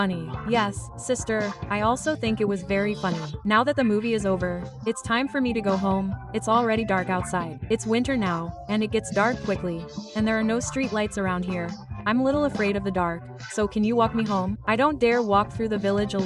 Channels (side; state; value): both; identical; correlation 1.00